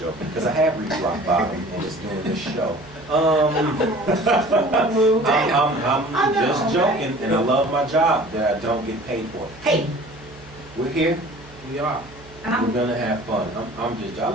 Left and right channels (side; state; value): right; noise; hum, 22 dB below the sound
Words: because I have reached rock bottom and it's doing this show. I'm know, just joking, and I love my job that I don't get paid for. Hey, we're here. We are. We're gonna have fun. I'm just.